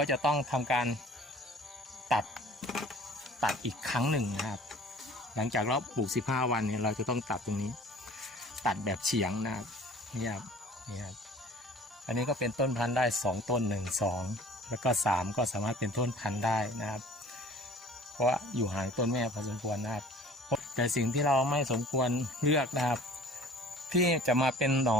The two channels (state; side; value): normal; both; correlation 0.47